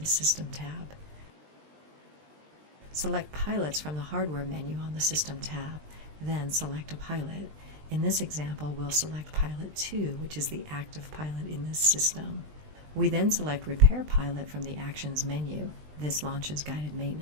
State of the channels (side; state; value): left; late; 20 ms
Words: System tab. Select Pilots from the Hardware menu on the System tab, then select a pilot. In this example, we'll select Pilot 2, which is the active pilot in this system. We then select Repair Pilot from the Actions menu. This launches guided